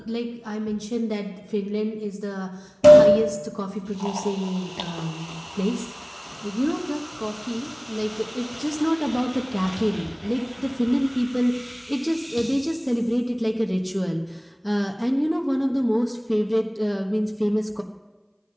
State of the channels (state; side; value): identical; both; correlation 1.00